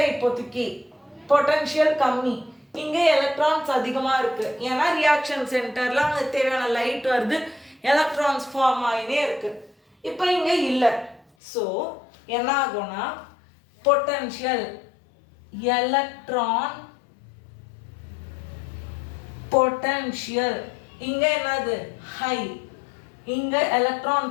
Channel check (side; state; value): right; drops out; at 11.2 s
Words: இப்போதைக்கு பொட்டன்ஷியல் கம்மி. இங்க எலக்ட்ரான்ஸ் அதிகமா இருக்கு. ஏன்னா ரியாக்ஷன் சென்டர்ல அங்க தேவையான லைட் வருது, எலக்ட்ரான்ஸ் ஃபார்ம் ஆகினே இருக்கு. இப்போ இங்க இல்லை. ஸோ என்ன ஆகும்னா பொட்டன்ஷியல் எலக்ட்ரான் பொட்டன்ஷியல். இங்க என்னது ஹை, இங்க electron